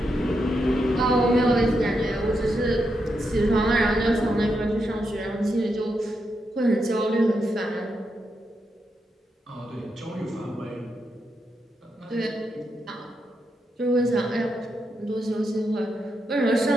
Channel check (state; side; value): normal; both; correlation 0.84